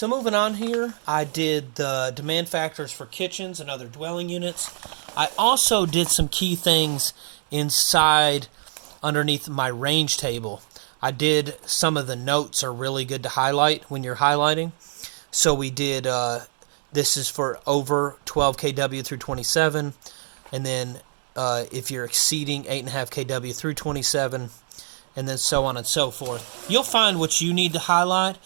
moving on here, I did the demand factors for kitchens and other dwelling units. I also did some key things inside underneath my range table. I did some of the notes are really good to highlight when you're highlighting. So we did... this is for over 12 kW through 27, and then if you're exceeding 8.5 kW through 27, and then so on and so forth. You'll find what you need to highlight.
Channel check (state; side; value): silent; left; 63 dB below the other